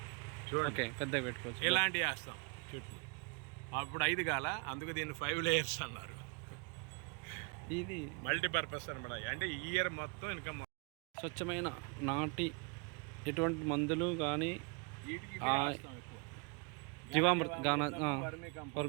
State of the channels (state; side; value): quieter; left; 34.9 dB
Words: చూడండి పెద్దగా పెట్టుకోవచ్చు. ఇలాంటివి వేస్తాం చుట్టూ. అప్పుడు 5 కాల, అందుకు దీన్ని 5 లేయర్స్ అన్నారు. ఇది మల్టీపర్పస్ అనమాట. అంటే ఈ ఇయర్ మొత్తం ఇన్కమ్. స్వచ్ఛమైన నాటి ఎటువంటి మందులు కానీ జీవామృత